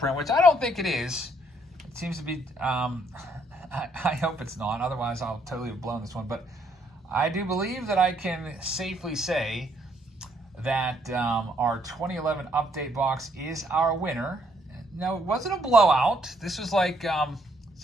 which I don't think it is. It seems to be... I hope it's not, otherwise I'll totally have blown this one. But I do believe that I can safely say that our 2011 update box is our winner. No, it wasn't a blowout. This was like, it's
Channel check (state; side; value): normal; both; correlation 0.69